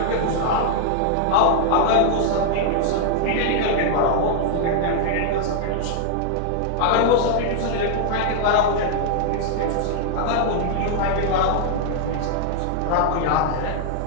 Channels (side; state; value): both; different; correlation 0.00